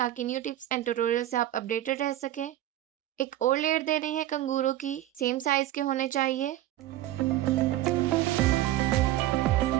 न्यू टिप्स एंड ट्यूटोरियल से आप अपडेटेड रह सकें। एक और लेयर दे रही है कंगूरों की, सेम साइज के होने चाहिए।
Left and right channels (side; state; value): left; quieter; 14.2 dB